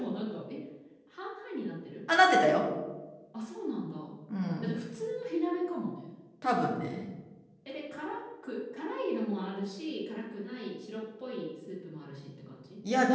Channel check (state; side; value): identical; both; correlation 1.00